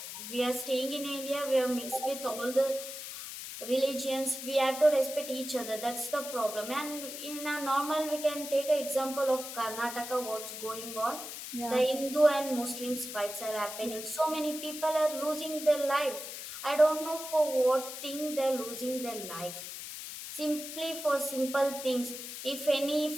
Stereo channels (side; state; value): left; noise; hiss, 9 dB below the sound